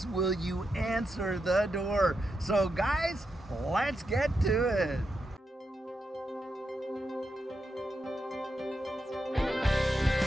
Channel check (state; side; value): normal; both; correlation 0.86